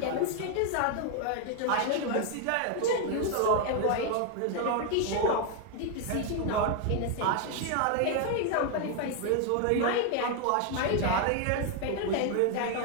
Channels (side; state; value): both; different; correlation 0.01